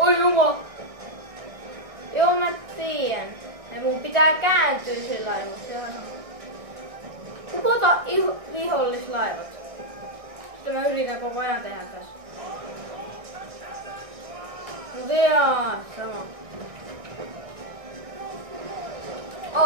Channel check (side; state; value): left; late; 1.6 ms